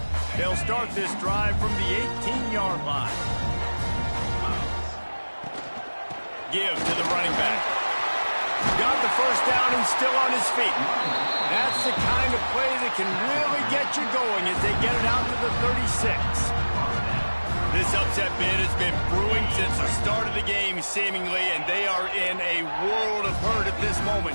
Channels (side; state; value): both; inverted; correlation -1.00